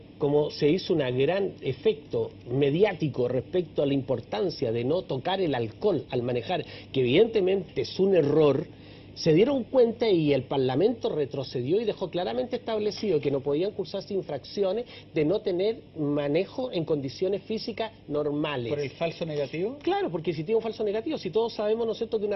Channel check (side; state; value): both; identical; correlation 1.00